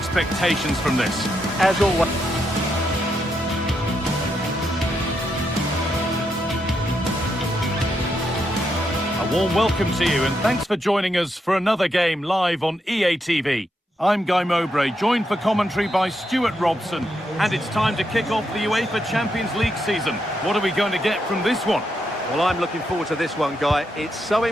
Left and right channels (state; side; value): normal; both; correlation 0.81